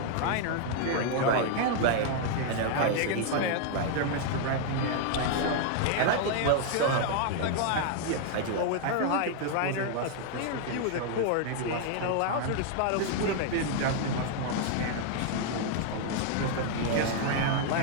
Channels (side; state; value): both; different; correlation 0.00